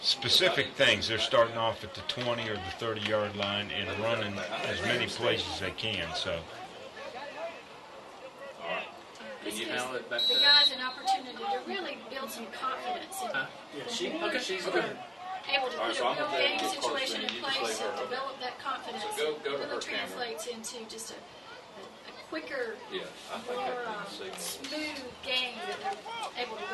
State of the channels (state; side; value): identical; both; correlation 1.00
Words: things. They're starting off at the 20 or the 30-yard line and running as many plays as they can. So. This gives the guys an opportunity to really build some confidence and She's able to put a real game situation in place and develop that confidence. So go to really her translates into just a quicker, Yeah, I think more I can see. smooth game that they're able to